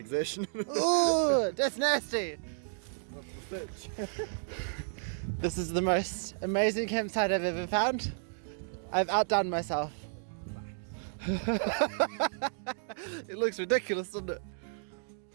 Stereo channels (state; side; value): silent; left; digital silence